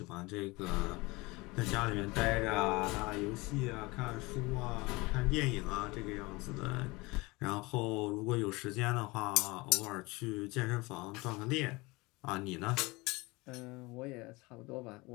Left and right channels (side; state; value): right; quieter; 23.7 dB